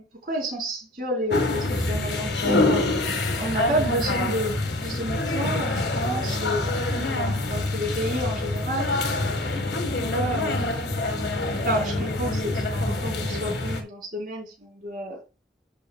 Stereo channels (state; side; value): normal; both; correlation 0.42